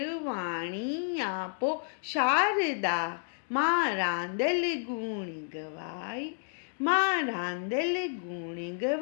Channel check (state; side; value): silent; right; digital silence